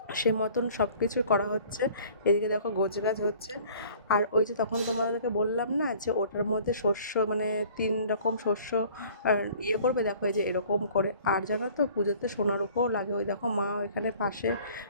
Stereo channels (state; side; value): inverted; both; correlation -0.51